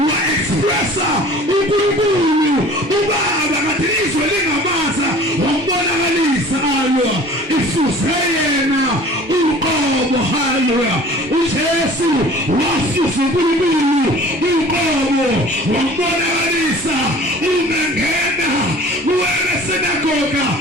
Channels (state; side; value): normal; both; correlation 0.46